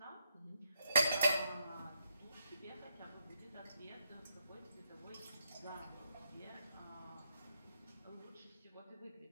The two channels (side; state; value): both; inverted; correlation -0.78